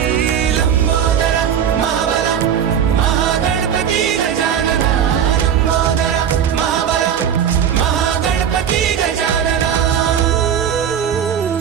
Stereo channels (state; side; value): quieter; left; 8.6 dB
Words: लंबोदर महाबल महागणपती गजानना। लंबोदर महाबल महागणपती गजानना।